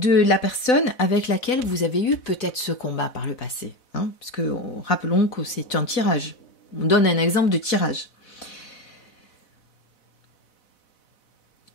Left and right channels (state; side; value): late; right; 4.0 ms